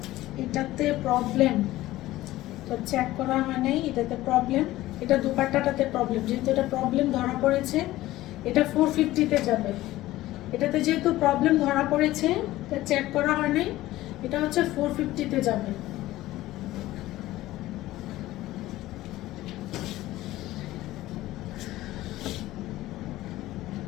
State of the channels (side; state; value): right; quieter; 16.3 dB